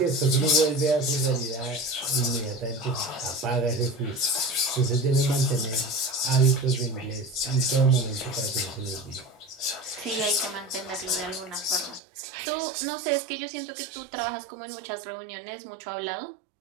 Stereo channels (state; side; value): drops out; left; at 12.0 s